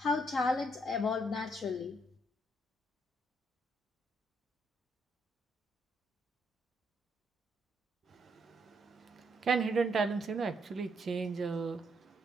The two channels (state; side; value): normal; both; correlation 0.74